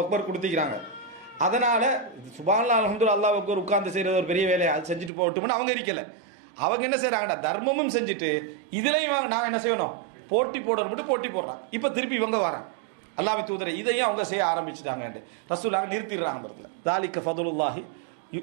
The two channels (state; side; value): drops out; left; at 5.1 s